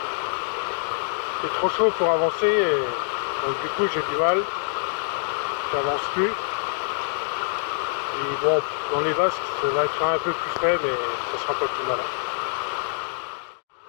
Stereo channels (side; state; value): right; silent; digital silence